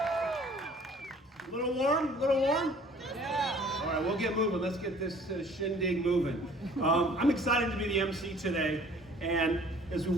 A little warm? A little warm? Yeah. All right, we'll get moving. Let's get this shindig moving. I'm excited to be the MC today, and as we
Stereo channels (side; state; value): both; normal; correlation 0.53